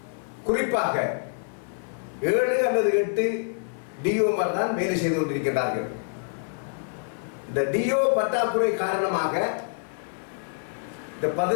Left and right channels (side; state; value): right; silent; digital silence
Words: குறிப்பாக 7 அல்லது 8 டிஓமார் தான் வேலை செய்து கொண்டிருக்கிறார்கள். இந்த டிஓ பற்றாக்குறை காரணமாக இந்த